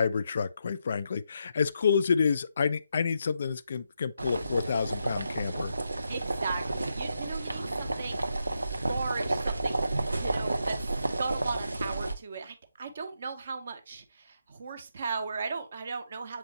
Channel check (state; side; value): inverted; both; correlation -0.83